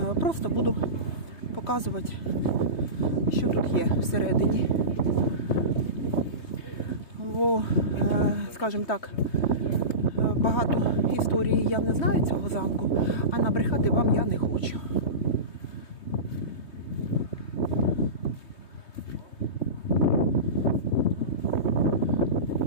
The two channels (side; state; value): right; late; 3.2 ms